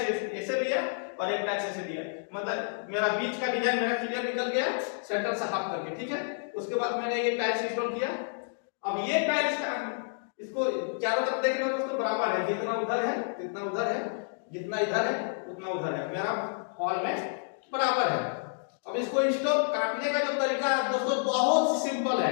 ऐसे लिया और एक टाइप से ऐसे लिया, मतलब मेरा बीच का डिजाइन मेरा क्लियर निकल गया सेंटर से हाफ करके, ठीक है। उसके बाद मैंने ये टाइल्स इंस्टॉल किया। अब ये टाइल्स का इसको चारों तरफ देख रहे हो दोस्तों, बराबर है, जितना उधर है जितना उधर है, जितना इधर है उतना उधर है, मेरा हॉल में बराबर है। अब इसको इंस्टॉल काटने का जो तरीका है दोस्तों बहुत सिंपल है,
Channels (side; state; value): right; silent; digital silence